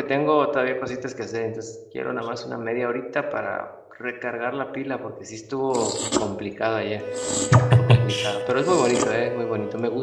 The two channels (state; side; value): identical; both; correlation 1.00